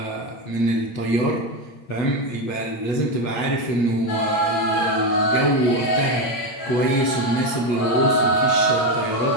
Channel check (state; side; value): late; right; 8.5 ms